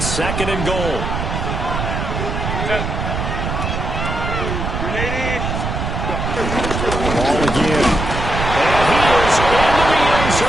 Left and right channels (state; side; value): noise; right; rumble, 3 dB below the sound